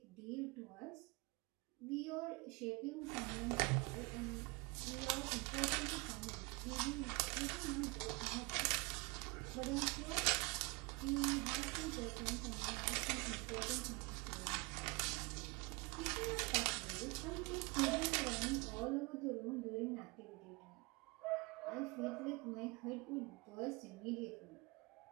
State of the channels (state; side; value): quieter; left; 27.0 dB